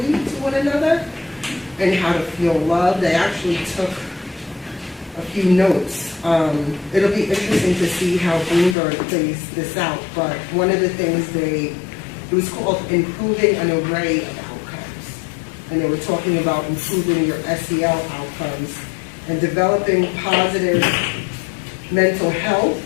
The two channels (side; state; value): right; drops out; at 8.8 s